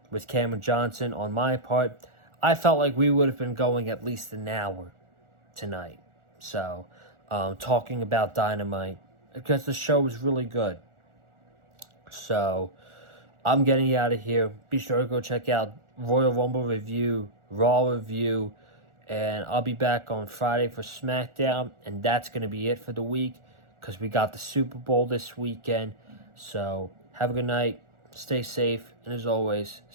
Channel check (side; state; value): left; late; 1.4 ms